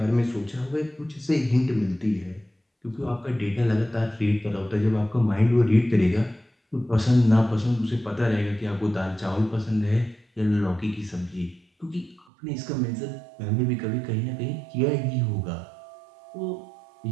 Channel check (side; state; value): left; drops out; at 12.2 s